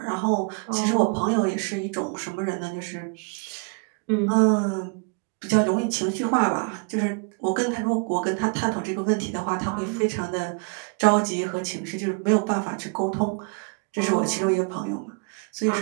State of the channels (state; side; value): quieter; left; 36.2 dB